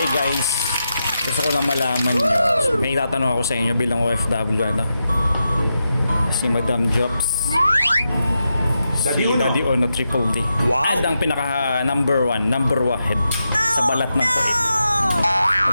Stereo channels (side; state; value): both; inverted; correlation -0.87